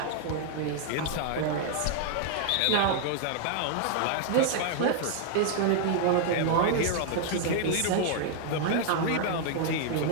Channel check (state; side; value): different; both; correlation 0.00